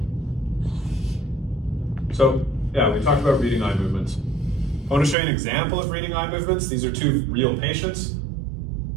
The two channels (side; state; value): left; drops out; at 5.2 s